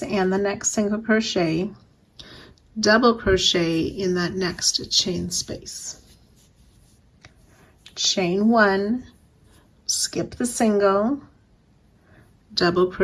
and the next single crochet, double crochet in that next chain space, chain 1, skip the single, double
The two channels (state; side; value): identical; both; correlation 1.00